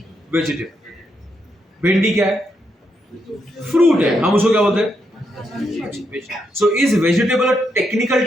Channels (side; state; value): both; normal; correlation 0.81